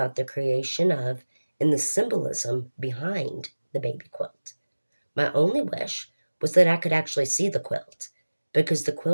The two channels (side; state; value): both; inverted; correlation -1.00